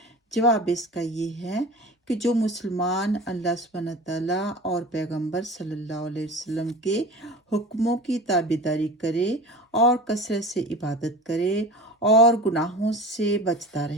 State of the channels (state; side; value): normal; both; correlation 0.35